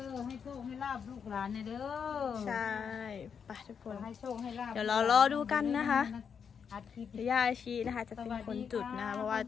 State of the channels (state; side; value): quieter; right; 6.9 dB